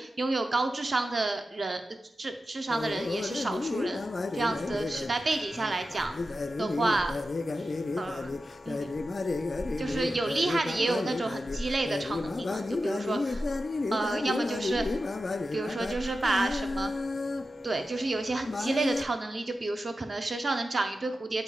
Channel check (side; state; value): both; normal; correlation 0.92